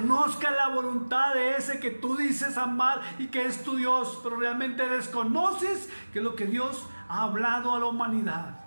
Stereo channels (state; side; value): inverted; both; correlation -1.00